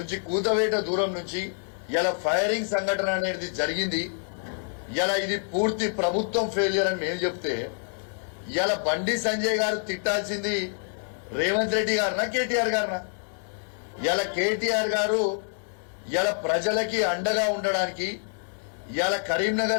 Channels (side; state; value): right; silent; digital silence